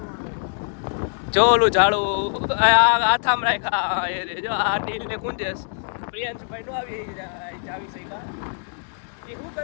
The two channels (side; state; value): right; silent; digital silence